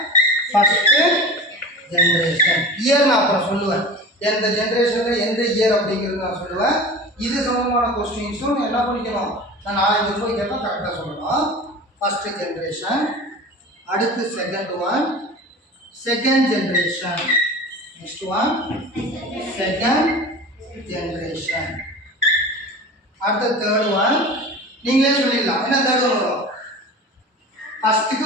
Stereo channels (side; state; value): both; normal; correlation 0.35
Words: ஃபர்ஸ்ட் ஜெனரேஷன் இயர் நான் அப்புறம் சொல்லுவேன் எந்த ஜெனரேஷன்ல எந்த இயர் அப்படிங்கிறது நான் சொல்லுவேன் இது சம்பந்தமான क्वेश्चंसும் என்ன பண்ணிக்கணும் நான் நாளைக்கு போய் கேட்டா கரெக்ட்டா சொல்லணும் ஃபர்ஸ்ட் ஜெனரேஷன் அடுத்து second one second generation next one second generation அடுத்து தேர்ட் ஒன் நீங்களே சொல்லிடலாம் என்ன தேர்ட் ஒன் வரும் ஃபர்ஸ்ட்க்கு